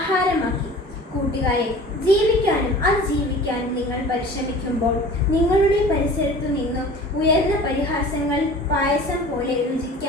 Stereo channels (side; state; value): both; normal; correlation 0.42